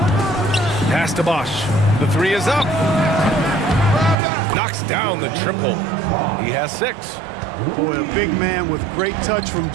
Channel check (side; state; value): left; drops out; at 4.2 s